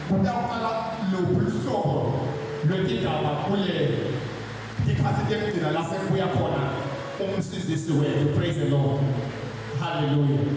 kutaqala lobuhlobo lwendaba kule ikhathi lekugcina la sekuya khona umsizisi wethu. Praise the Lord. Hallelujah.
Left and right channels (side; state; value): both; identical; correlation 1.00